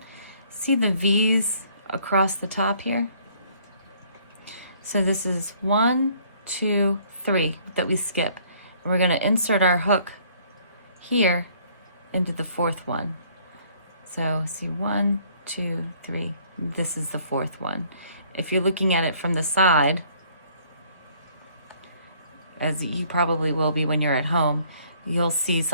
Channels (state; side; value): inverted; both; correlation -0.60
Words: see the V's across the top here? So this is 1, 2, 3 that we skip. And we're going to insert our hook here into the 4th one. So see 1, 2, 3. This is the 4th one. If you're looking at it from the side, as you probably will be when you're at home, you'll see